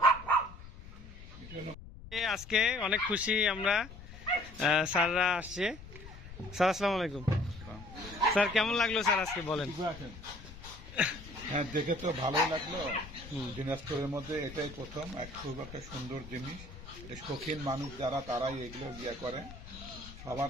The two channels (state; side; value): noise; left; rumble, 15 dB below the sound